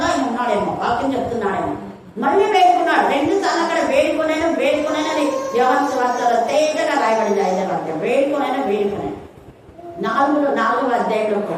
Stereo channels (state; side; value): identical; both; correlation 1.00